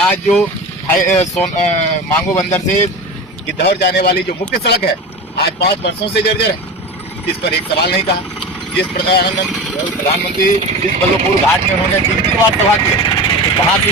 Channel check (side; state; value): both; normal; correlation 0.29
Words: जो मांगो बंदर से गिद्धौर जाने वाली जो मुख्य सड़क है, आज 5 वर्षों से जर्जर है। इस पर एक सवाल नहीं कहा। जिस प्रधानमंत्री जिस बल्लभपुर घाट में उन्होंने 3 बार सभा की, तो वहां